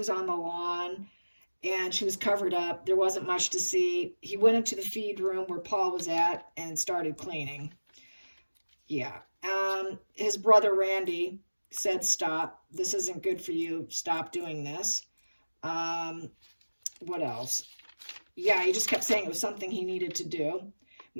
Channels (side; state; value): both; inverted; correlation -1.00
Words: on the lawn and she was covered up. There wasn't much to see. He went into the feed room where Paul was at and started cleaning. Yeah. His brother Randy said, stop, this isn't good for you, stop doing this. What else? Yeah, he just kept saying it was something he needed to do.